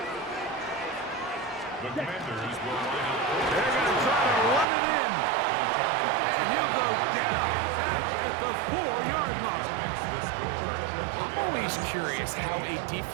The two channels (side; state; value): left; drops out; at 4.7 s